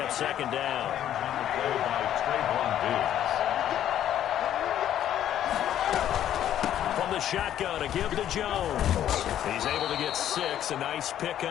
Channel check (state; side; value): quieter; right; 11.1 dB